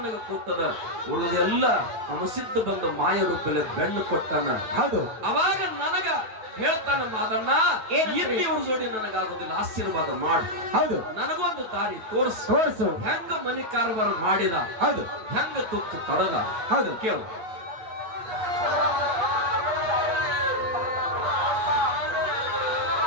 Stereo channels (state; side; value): late; left; 9.2 ms